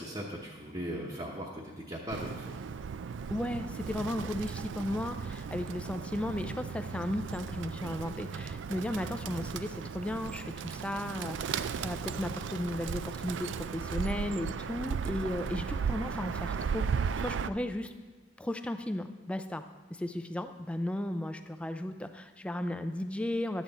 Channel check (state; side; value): normal; both; correlation 0.75